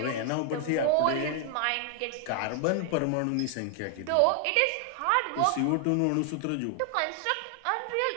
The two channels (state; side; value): different; both; correlation 0.00